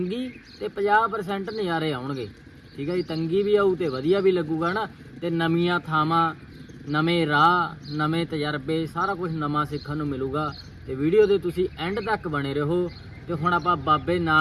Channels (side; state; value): both; identical; correlation 1.00